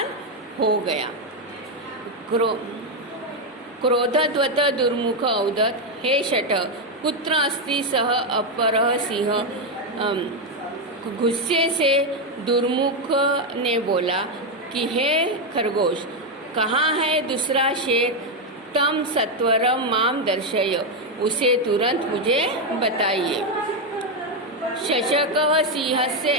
हो गया। क्रोधवत दुर्मुख औदत, हे शठ, कुत्र अस्ति सः अपरः सिंह। गुस्से से दुर्मुख ने बोला कि हे खरगोश, कहाँ है दूसरा शेर। तम सत्वरम माम दर्शय, उसे तुरंत मुझे बताइए। शशकः सिंहस्य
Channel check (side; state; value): both; normal; correlation 0.05